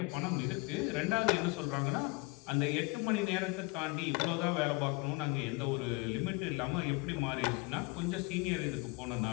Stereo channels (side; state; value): right; quieter; 26.8 dB